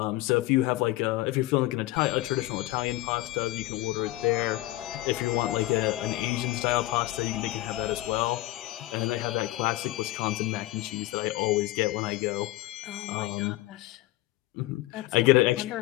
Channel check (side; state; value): right; quieter; 17.7 dB